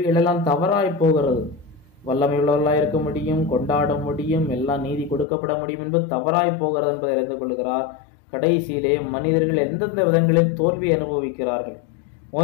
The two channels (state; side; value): drops out; right; at 5.2 s